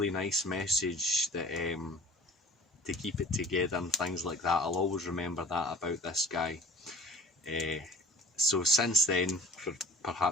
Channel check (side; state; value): both; normal; correlation 0.47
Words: nice message that to keep it together and things like that. I'll always remember that about this guy. So since then, for